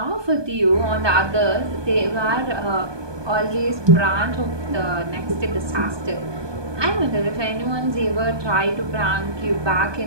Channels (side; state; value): left; late; 1.2 ms